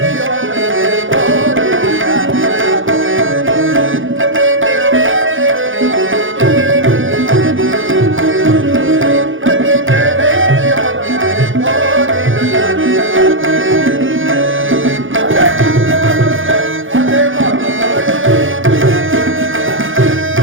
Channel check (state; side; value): late; left; 0.58 ms